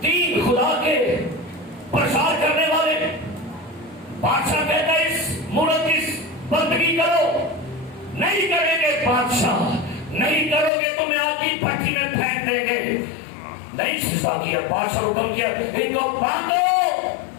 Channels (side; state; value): right; drops out; at 10.7 s